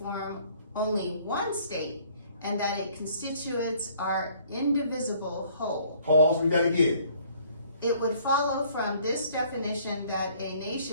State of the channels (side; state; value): both; inverted; correlation -0.60